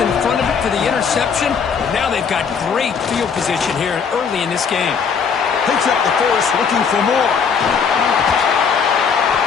in front of it for the interception. Now they've got great field position here early in this game. Picks up the force, looking for more.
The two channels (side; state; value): right; quieter; 6.3 dB